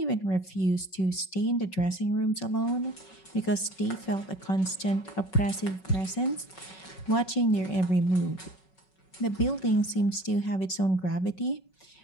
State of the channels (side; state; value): right; late; 5.4 ms